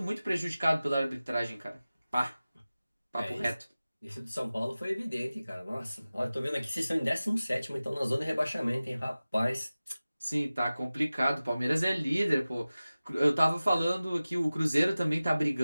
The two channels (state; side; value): inverted; both; correlation -0.97